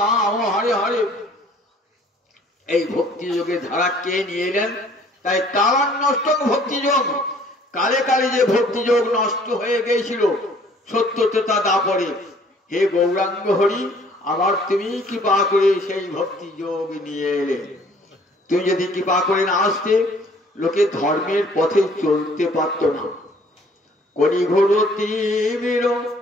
হরে হরে। এই ভক্তি যোগের ধারা কে নিয়ে এলেন? তাই কালান্নষ্ট ভক্তি যোগ। কালে কালে যে ভক্তি যোগ নষ্ট হয়ে গিয়েছিল সত্য ত্রেতা দাপরে, হে গৌরাঙ্গ হরি, আবার তুমি কৃপা করে সেই ভক্তি যোগ নিয়ে এলে। তুমি যদি কৃপা করে না আসতে, লোকে ধর্মের পথে চলতে পারত না। কলিঘোর তীব্র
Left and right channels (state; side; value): normal; both; correlation 0.57